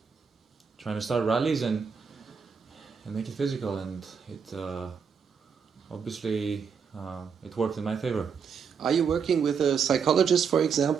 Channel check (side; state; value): left; quieter; 6.4 dB